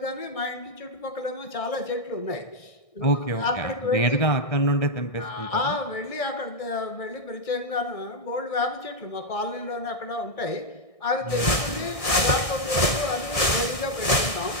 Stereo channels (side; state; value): right; late; 1.6 ms